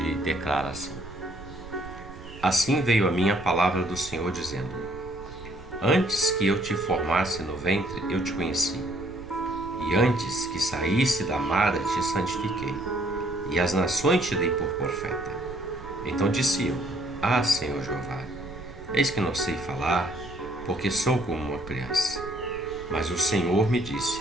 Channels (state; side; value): noise; right; rumble, 15 dB below the sound